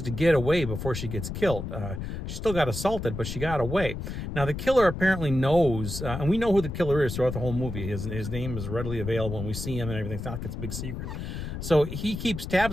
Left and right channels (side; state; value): left; noise; rumble, 6 dB below the sound